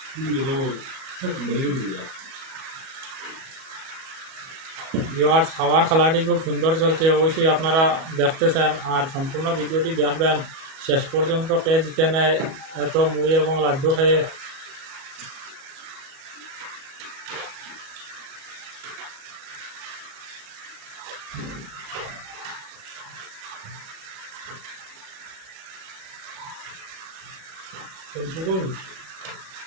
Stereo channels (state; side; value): late; left; 37 ms